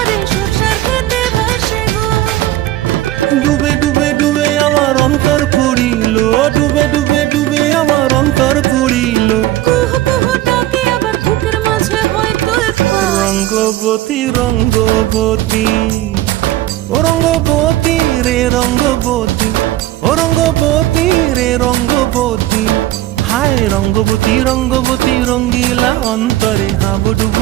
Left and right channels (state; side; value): quieter; left; 15.1 dB